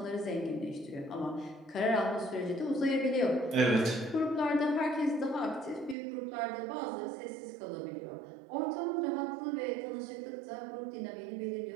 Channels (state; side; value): drops out; left; at 6.0 s